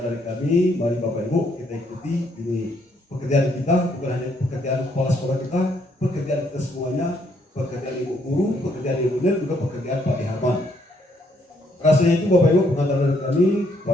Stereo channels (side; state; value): both; normal; correlation 0.71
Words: dari kami. Mari Bapak Ibu kita ikuti ini pekerjaan kita, bukan hanya pekerjaan kepala sekolah kita, pekerjaan kita semuanya, pekerjaan Ibu Guru, pekerjaan Ibu Nel, juga pekerjaan Pak Darman. Rasanya itu Bapak Ibu pengantar dari kami